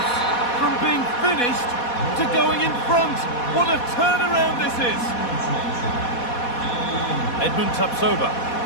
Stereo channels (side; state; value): right; late; 4.1 ms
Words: From being finished to going in front. What a turnaround this is! Edmund Tapsoba.